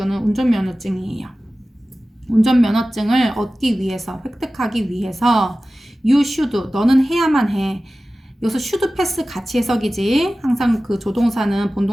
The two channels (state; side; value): normal; both; correlation 0.96